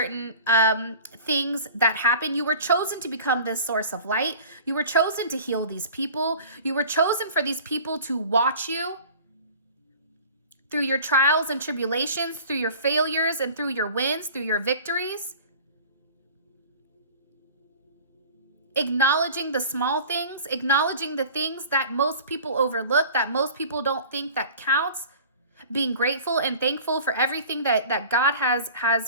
things that happen. You were chosen to become this source of light. You were chosen to heal these people. You were chosen for these people to watch you through your trials and tribulations, through your failures and through your wins, through your victories. Acknowledging the small things, acknowledging the things that most people overlook, that most people don't think that counts. Being grateful and thankful for everything that God has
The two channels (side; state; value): both; inverted; correlation -0.42